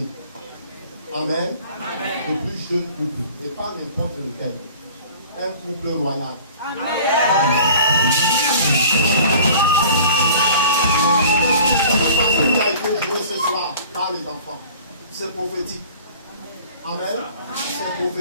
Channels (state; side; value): inverted; both; correlation -0.47